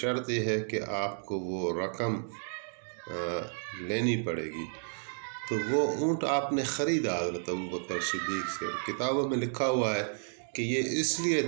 یہ ہے کہ آپ کو وہ رقم لینی پڑے گی۔ تو وہ اونٹ آپ نے خریدا حضرت ابوبکر صدیق سے۔ کتابوں میں لکھا ہوا ہے کہ یہ اس لیے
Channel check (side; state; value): left; silent; digital silence